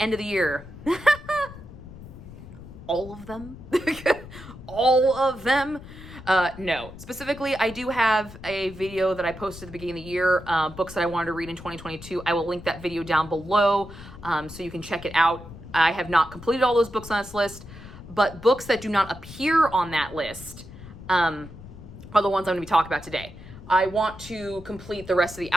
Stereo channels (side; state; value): left; noise; rumble, 15 dB below the sound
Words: end of the year? All of them? All of them? No. Specifically, I do have a video that I posted at the beginning of the year, books that I wanted to read in 2022. I will link that video down below so you can check it out. I have not completed all those books on this list, but books that do not appear on that list are the ones I'm going to be talking about today. I want to complete the rest of the